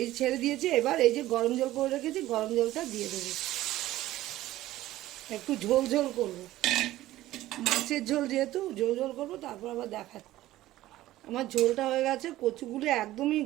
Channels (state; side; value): quieter; left; 15.4 dB